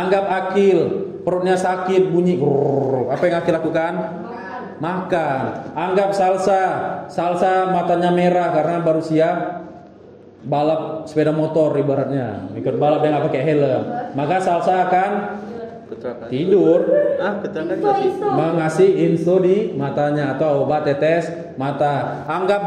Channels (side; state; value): both; identical; correlation 1.00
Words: Akil, perutnya sakit, bunyi grrr. Apa yang Akil lakukan? Makan. Anggap Salsa matanya merah karena baru siap balap sepeda motor ibaratnya, ikut balap yang nggak pakai helm. Maka Salsa akan tidur, mengasih info di matanya atau obat tetes mata.